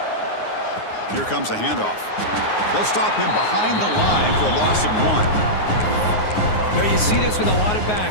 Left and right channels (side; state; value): right; late; 9.6 ms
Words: Here comes a handoff. They'll stop him behind the line for a loss of 1. Now you see this with a lot of